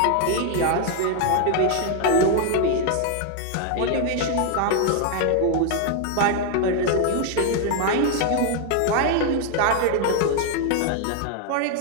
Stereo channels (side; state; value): both; different; correlation 0.00